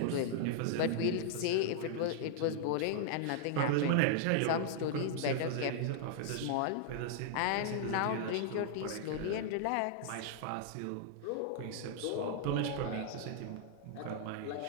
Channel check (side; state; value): both; different; correlation -0.01